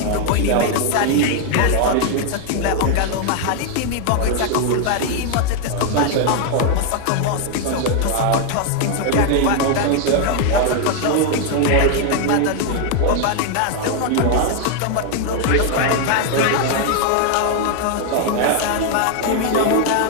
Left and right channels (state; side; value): different; both; correlation 0.00